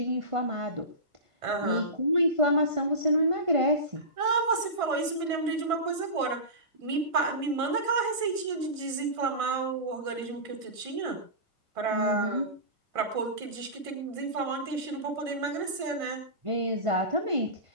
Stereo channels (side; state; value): left; late; 1.6 ms